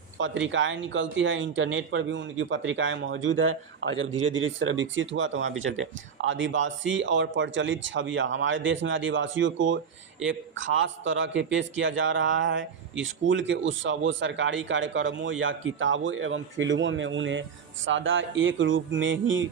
पत्रिकाएं निकलती है, इंटरनेट पर भी उनकी पत्रिकाएं मौजूद है और जब धीरे धीरे इस तरह विकसित हुआ तो वहाँ भी चलते। आदिवासी और प्रचलित छवियाँ, हमारे देश में आदिवासियों को एक खास तरह के पेश किया जा रहा है। स्कूल के उत्सवों, सरकारी कार्यक्रमों या किताबों एवं फिल्मों में उन्हें सदा एक रूप में ही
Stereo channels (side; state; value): left; quieter; 6.7 dB